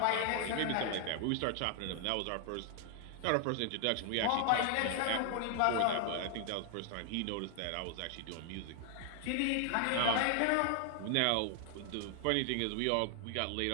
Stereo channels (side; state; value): both; different; correlation 0.00